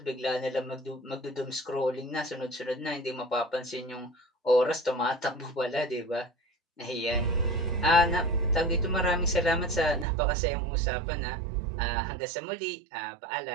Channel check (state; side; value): drops out; left; at 10.1 s